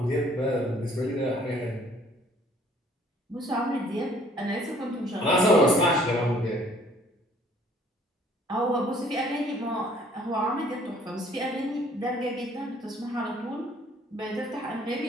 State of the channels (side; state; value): both; normal; correlation 0.58